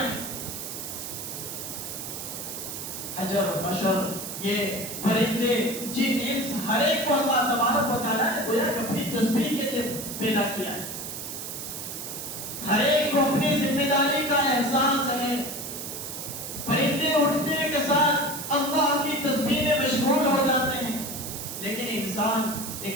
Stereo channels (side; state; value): right; noise; hiss, 7 dB below the sound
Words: ہیں. حجر بشر یہ پرندے جن انس ہر ایک کو اللہ تبارک و تعالیٰ نے گویا کہ اپنی تسبیح کے لیے پیدا کیا ہے. ہر ایک کو اپنی ذمہ داری کا احساس ہے. پرندے اٹھنے کے ساتھ اللہ کی تسبیح میں مشغول ہو جاتے ہیں, لیکن انسان